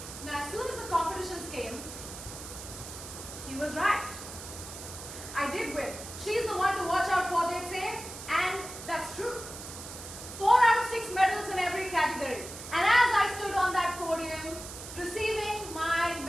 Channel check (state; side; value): noise; right; hiss, 11 dB below the sound